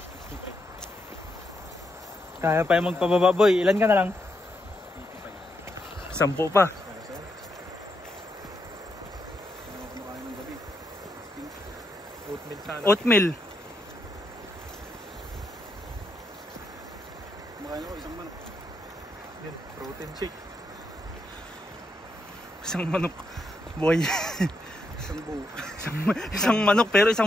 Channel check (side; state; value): both; normal; correlation 0.81